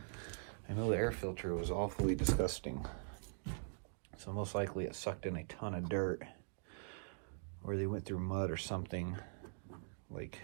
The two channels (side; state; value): left; silent; digital silence